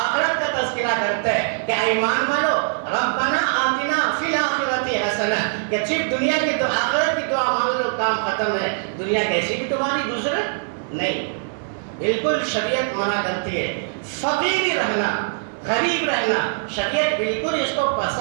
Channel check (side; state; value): left; silent; 61 dB below the other